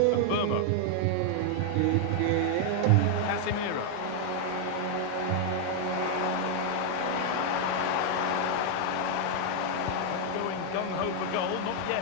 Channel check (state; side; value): different; both; correlation 0.00